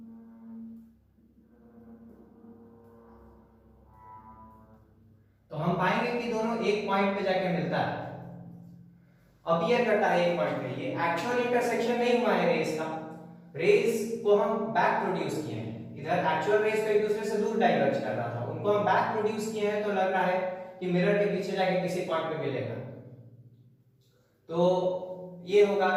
तो हम पाएंगे कि दोनों एक पॉइंट पे जाके मिलता है, अपीयर करता है एक पॉइंट पे। ये एक्चुअल इंटरसेक्शन नहीं हुआ है रेज का। रेज को हम बैक प्रोड्यूस किए हैं। इधर एक्चुअल रेज तो एक दूसरे से दूर डाइवर्ज कर रहा था, उनको हम बैक प्रोड्यूस किए हैं तो लग रहा है कि मिरर के पीछे जाके किसी पॉइंट पे मिलेगा। तो ये होगा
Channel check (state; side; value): identical; both; correlation 1.00